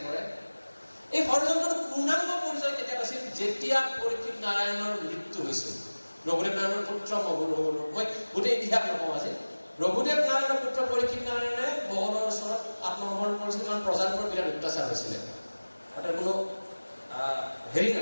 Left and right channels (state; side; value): inverted; both; correlation -1.00